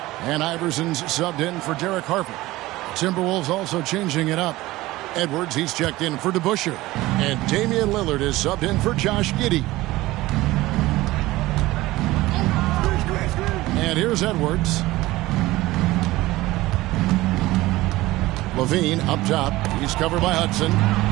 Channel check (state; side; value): quieter; left; 18.3 dB